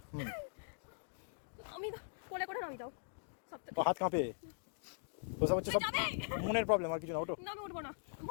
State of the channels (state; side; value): silent; right; digital silence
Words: আমি কোলে করে নামি দাও। তো হাত কাঁপে। ওসব হচ্ছে সব মনের প্রবলেম, আর কিছু না। ওঠো। না আমি উঠবো না।